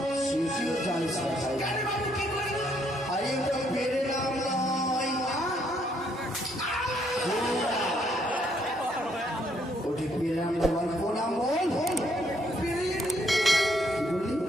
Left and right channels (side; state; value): both; normal; correlation 0.70